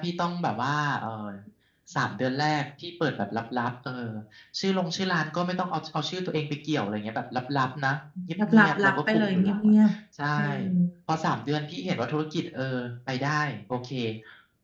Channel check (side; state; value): both; identical; correlation 1.00